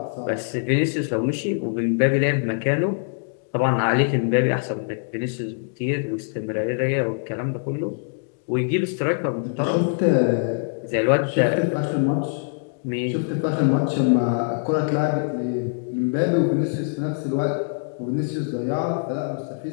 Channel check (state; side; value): silent; right; digital silence